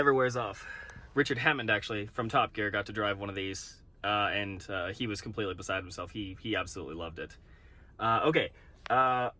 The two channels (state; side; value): identical; both; correlation 1.00